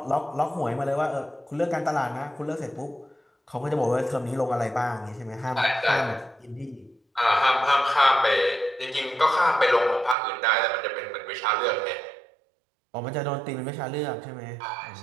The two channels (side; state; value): left; drops out; at 10.2 s